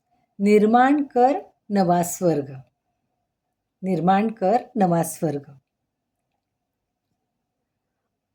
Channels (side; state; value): both; identical; correlation 1.00